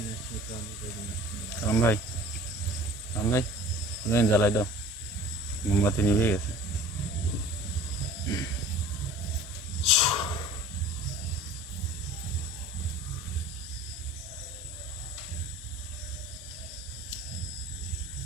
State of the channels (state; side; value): normal; both; correlation 0.45